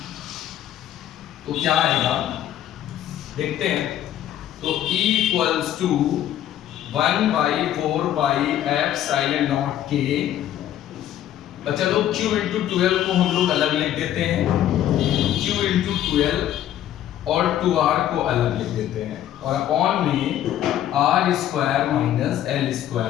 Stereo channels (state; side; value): quieter; right; 11.7 dB